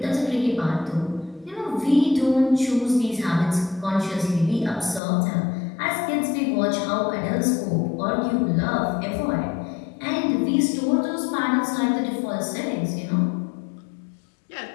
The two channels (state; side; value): drops out; right; at 5.0 s